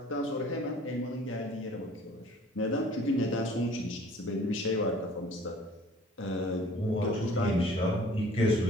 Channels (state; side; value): normal; both; correlation 0.51